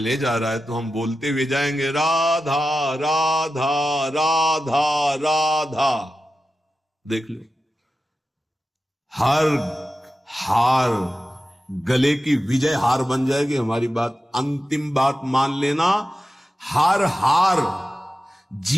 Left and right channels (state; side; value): normal; both; correlation 0.92